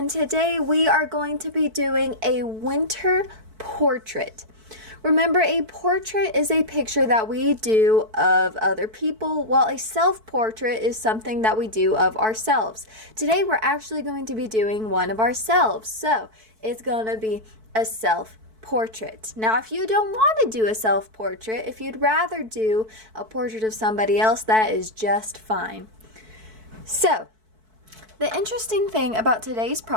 today we are going to be doing a winter portrait. Remember, a portrait is a picture that we do of other people, while a self-portrait is something that we do of ourselves. Today we're actually going to be doing one of ourselves, so it's going to be a self-portrait. Now, if you don't want to do a self-portrait, if you'd rather do a portrait of somebody else, that is just fine. So, the interesting thing about today's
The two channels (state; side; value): late; left; 4.6 ms